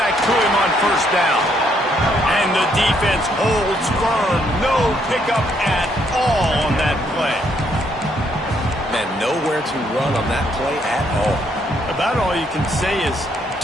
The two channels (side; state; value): both; normal; correlation 0.71